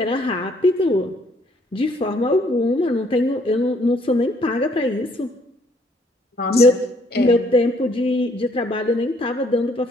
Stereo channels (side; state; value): both; normal; correlation 0.65